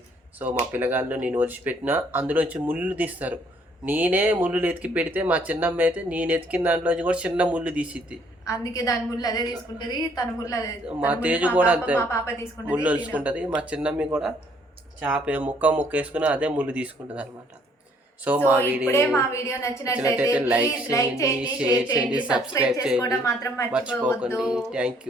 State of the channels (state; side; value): normal; both; correlation 0.64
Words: సో మా పిల్లగాళ్ళు నేను వదిలిపెట్టినా అందులోంచి ముళ్ళు తీస్తారు. నేనే ముళ్ళు ఎతికి పెడితే మా చిన్నమ్మ అయితే నేను ఎతికిన దాంట్లోంచి కూడా చిన్న ముళ్ళు తీసిద్ది. అందుకే దాని ముళ్ళు అదే తీసుకుంటది, తన ముళ్ళు అదే. మా తేజు కూడా అంతే తీసుకుంటది, ముళ్ళు వలుచుకుంటది. మా చిన్నమ్మి కూడా చేప ముక్క వేసుకుని అదే ముళ్ళు తీసుకుంటది అనమాట. సో మా వీడియో నచ్చినట్లయితే లైక్ చేయండి, షేర్ చేయండి, సబ్స్క్రైబ్ చేసుకోవడం మాత్రం మర్చిపోవద్దు. థ్యాంక్